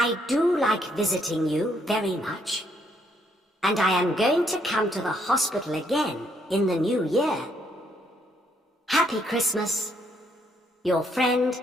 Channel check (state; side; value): normal; both; correlation 0.71